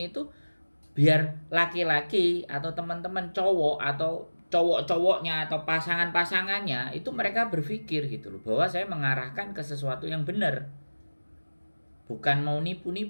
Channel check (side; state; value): both; inverted; correlation -1.00